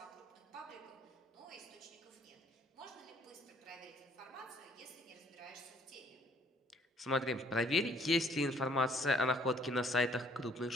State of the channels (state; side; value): normal; both; correlation 0.61